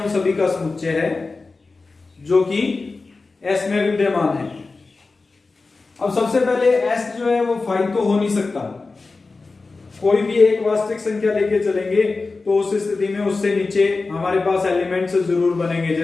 सभी का समुच्चय है जो कि S में विद्यमान है। अब सबसे पहले S जो है वो 5 तो हो नहीं सकता, कोई भी एक वास्तविक संख्या लेके चलेंगे तो उस स्थिति में उससे नीचे हमारे पास एलिमेंट्स जरूर बनेंगे।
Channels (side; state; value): right; quieter; 3.8 dB